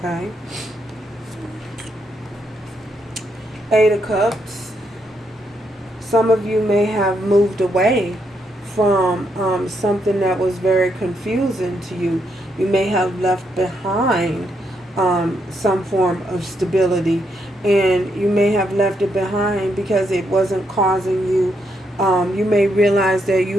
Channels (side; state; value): both; normal; correlation 0.78